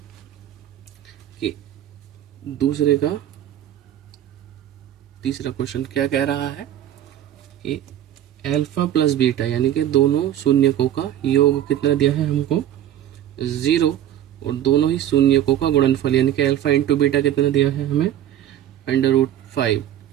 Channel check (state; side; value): quieter; left; 11.5 dB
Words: कि दूसरे का तीसरा क्वेश्चन क्या कह रहा है कि अल्फा प्लस बीटा यानी कि दोनों शून्यकों का योग कितना दिया है हमको, 0, और दोनों ही शून्यकों का गुणनफल यानी कि अल्फा इंटू बीटा कितना दिया है हमें, √5,